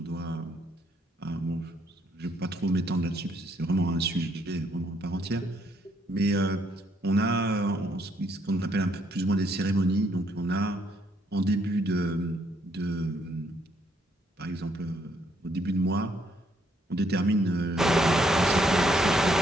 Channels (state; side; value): normal; both; correlation 0.71